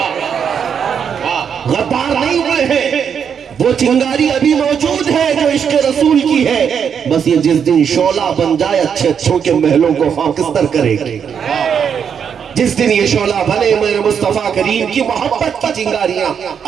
غدار نہیں ہوئے ہیں۔ وہ چنگاری ابھی موجود ہے جو عشق رسول کی ہے، بس یہ جس دن شعلہ بن جائے اچھے اچھوں کے محلوں کو خاکستر کرے گی۔ جس دن یہ شعلہ بنے میرے مصطفیٰ کریم کی محبت کی چنگاریاں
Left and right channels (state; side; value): quieter; left; 7.4 dB